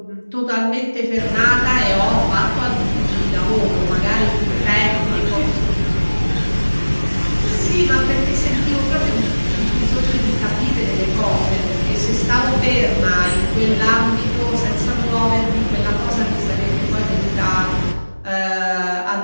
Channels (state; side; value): inverted; both; correlation -1.00